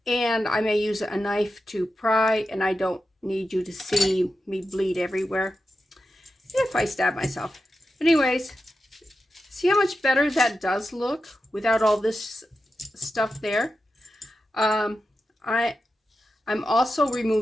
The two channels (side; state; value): both; normal; correlation 0.90